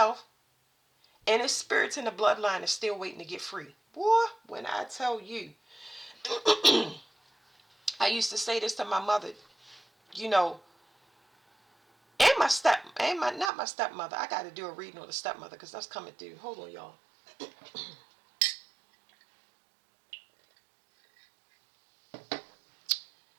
And the spirits in the bloodline are still waiting to get free. Boy, when I tell you, I used to say this to my mother, you know, and not my stepmother. I got to do a reading on the stepmother because that's coming through. Hold on, y'all.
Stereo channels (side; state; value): left; drops out; at 13.5 s